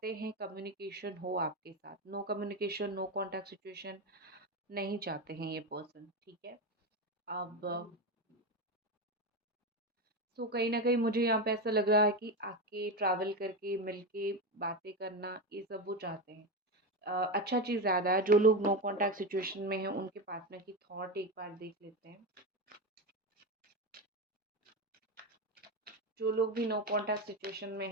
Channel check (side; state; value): both; normal; correlation 0.16